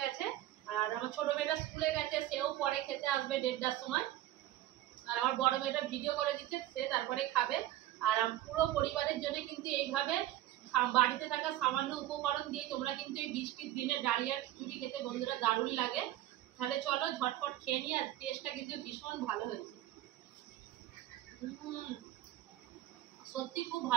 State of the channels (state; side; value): quieter; left; 14.3 dB